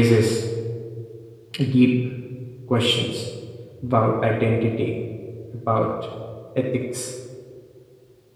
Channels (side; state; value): both; identical; correlation 1.00